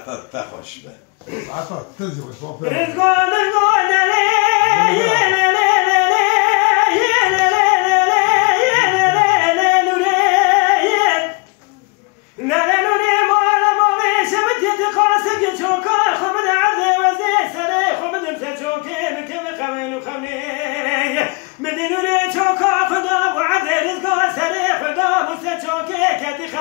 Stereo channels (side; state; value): right; quieter; 29.9 dB